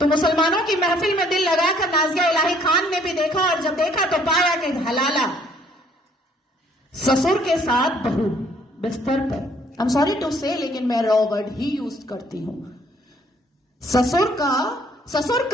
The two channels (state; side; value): normal; both; correlation 0.62